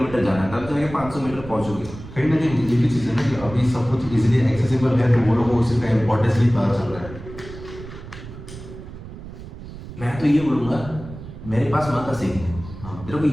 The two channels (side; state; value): right; noise; rumble, 13 dB below the sound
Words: जाना है, तब जाके 500 मीटर पहुंचोगे। कहीं ना कहीं ये भी चीज़ है ना कि अभी सब कुछ इजीली एक्सेसिबल है, तो वो लोगों को उसका इम्पोर्टेंस नहीं पता चल रहा है। मैं तो ये बोलूंगा मेरे पास मत सीखने, हाँ। तेरे को